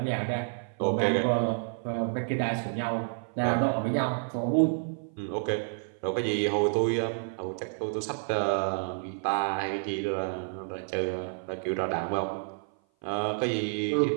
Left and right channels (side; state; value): left; silent; 55 dB below the other